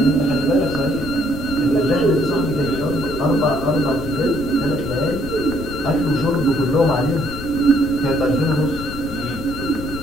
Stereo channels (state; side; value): noise; left; rumble, 11 dB below the sound